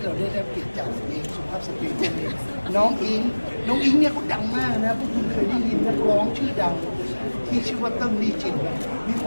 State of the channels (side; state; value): both; inverted; correlation -1.00